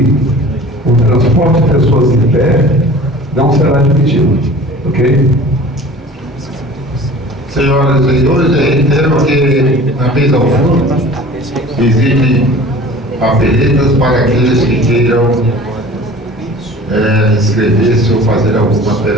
o transporte de pessoas em pé não será admitido, ok? Senhoras e senhores, eu reitero que na mesa ao fundo existem papeletas para aqueles que queiram inscrever-se ou fazer alguma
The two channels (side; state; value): both; normal; correlation 0.43